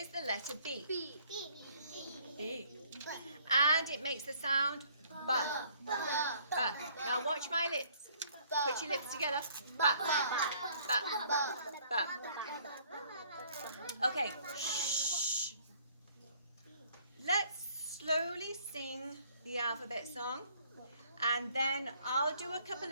the letter B. B. And it makes the sound B. B. Now watch my lips. Put your lips together. B. B. B. Okay. Shh. Let's slowly sing the alphabet song. And then I'll do a couple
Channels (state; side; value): inverted; both; correlation -0.61